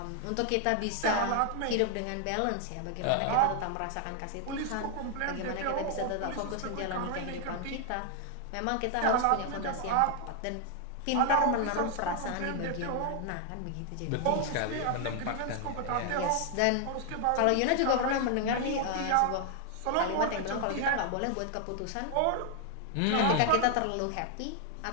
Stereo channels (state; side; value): different; both; correlation 0.00